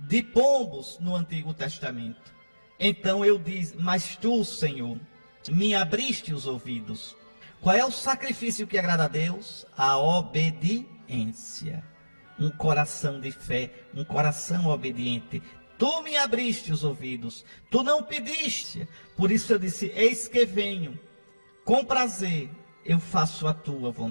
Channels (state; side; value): inverted; both; correlation -1.00